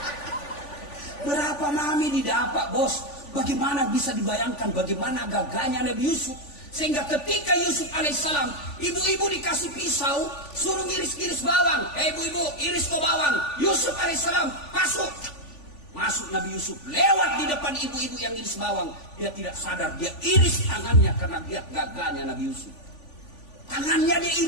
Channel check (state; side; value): late; right; 3.5 ms